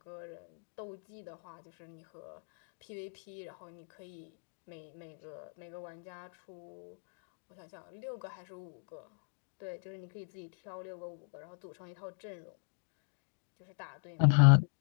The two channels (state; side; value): silent; right; digital silence